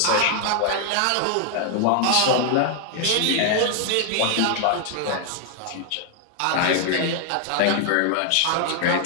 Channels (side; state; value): both; different; correlation 0.00